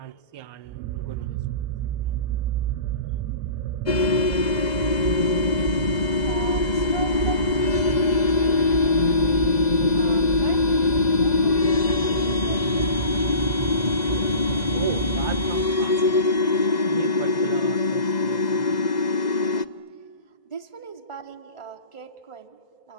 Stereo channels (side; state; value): right; late; 2.0 ms